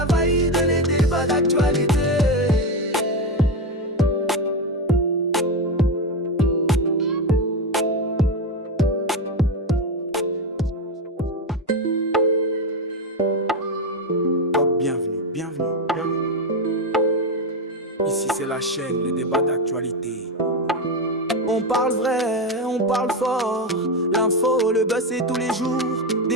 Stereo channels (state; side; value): normal; both; correlation 0.13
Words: vaïde, les débats d'actualité. Bienvenue, bienvenue, bienvenue. chaîne, les débats d'actualité. On parle vrai, on parle fort. L'info, le buzz, c'est tous les jours.